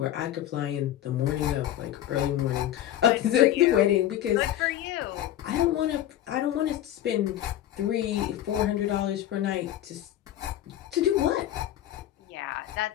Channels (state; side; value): quieter; right; 12.4 dB